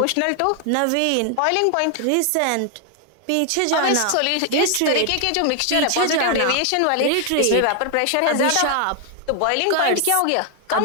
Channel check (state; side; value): different; both; correlation 0.00